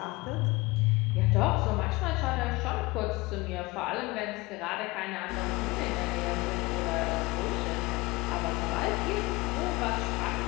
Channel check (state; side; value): quieter; right; 22.7 dB